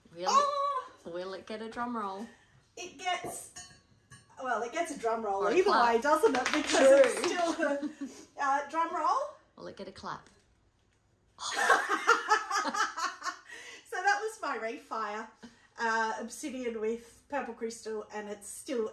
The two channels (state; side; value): identical; both; correlation 1.00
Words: Will it get a drum roll? It gets a drum roll either way, doesn't it? Because it's still a drum roll. Will it get a clap? So that was my refire, obsidian with purple crystal, and it's